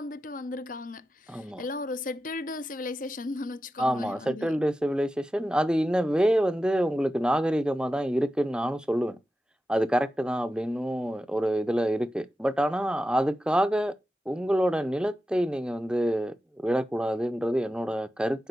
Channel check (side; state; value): both; normal; correlation 0.92